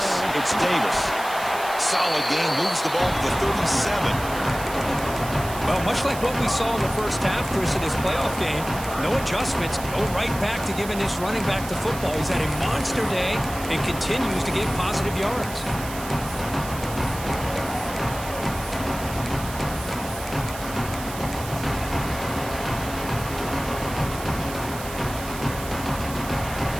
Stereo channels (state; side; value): noise; right; hiss, 12 dB below the sound